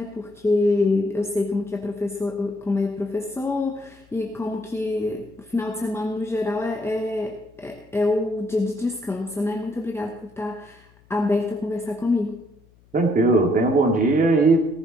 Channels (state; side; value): noise; left; hum, 30 dB below the sound